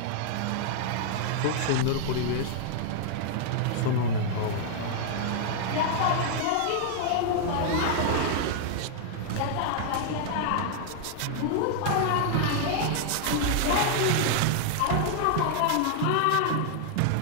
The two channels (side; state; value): both; different; correlation -0.01